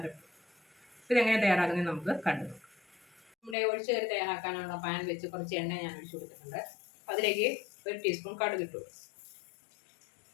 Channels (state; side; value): drops out; right; at 3.6 s